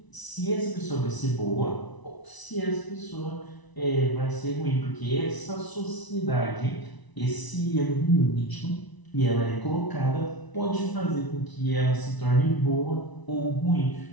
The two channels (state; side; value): late; right; 1.0 ms